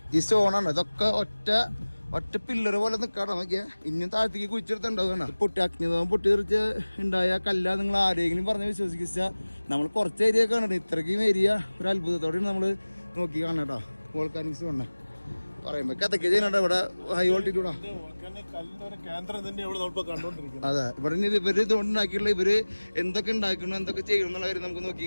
ഈ സ്റ്റോണാണ് ഇതൊക്കെ ഒറ്റ പില്ലറ് പോലെ നിൽക്കാട്ടോ. നോക്കിയാൽ ഇനിയും താഴത്തേക്ക് കുഴിച്ചെടുത്തുണ്ടാവുകയാണ്. അഗ്നിപർവ്വതം പൊട്ടിത്തെറിച്ച് ഉണ്ടായ കല്ല നിങ്ങൾ ആരെങ്കിലും പറഞ്ഞ് വിശ്വസിച്ചാൽ നമ്മൾ കുറച്ച് ഏരിയ കാണണം. ഇത്രയ്ക്കും ഏരിയ ഒരു അത്ഭുതത്തോടെയാണ് നമ്മൾ നോക്കി കാണണം കേട്ടോ. വോൾക്കാനിക്സ് കാണണം. പറയുമ്പോ കഥയ്ക്ക് ചെയ്യുന്നുണ്ട് ഇവിടെ ഹൈ വോൾട്ടിറ്റ്യൂഡാ. അതെ, ഇവിടെ ഇവര് ഇതുകൊണ്ടുണ്ടാക്കിയുള്ള ഇവര് എന്തൊക്കെ ഉണ്ടാക്കണം എന്തൊക്കെ ചെയ്യണം എന്നുള്ള കാര്യം നമുക്ക്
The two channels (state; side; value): inverted; both; correlation -1.00